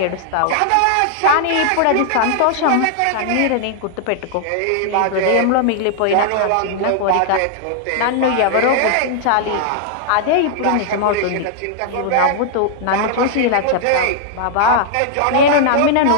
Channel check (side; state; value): both; different; correlation -0.01